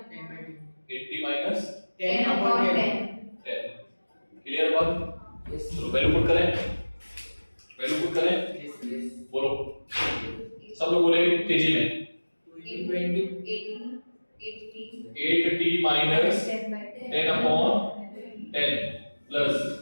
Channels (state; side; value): inverted; both; correlation -1.00